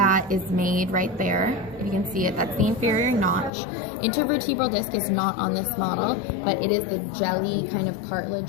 is made right there. If you can see it, that's the inferior notch. Intervertebral disc is not on this model, but it is the jelly kind of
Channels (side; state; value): right; drops out; at 3.5 s